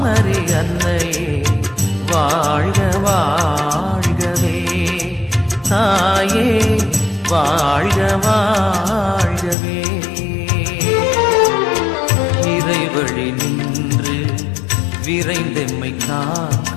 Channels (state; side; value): drops out; right; at 9.6 s